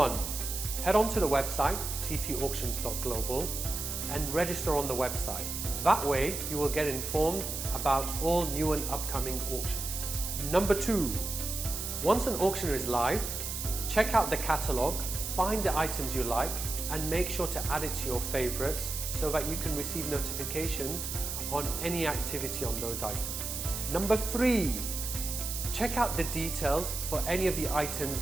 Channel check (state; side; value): noise; right; hiss, 4 dB below the sound